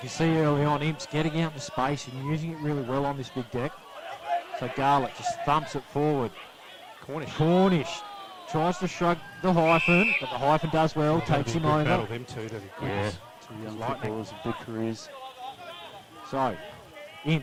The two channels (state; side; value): identical; both; correlation 1.00